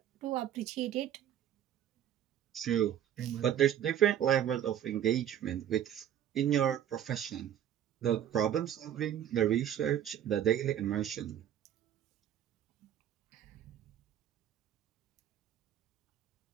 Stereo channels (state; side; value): quieter; left; 10.4 dB